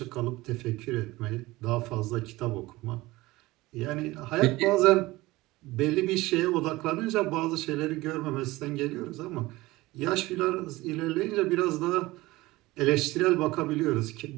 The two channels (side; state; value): left; quieter; 19.7 dB